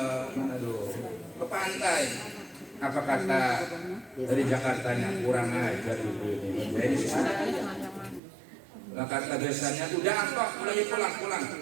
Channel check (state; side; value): drops out; left; at 8.2 s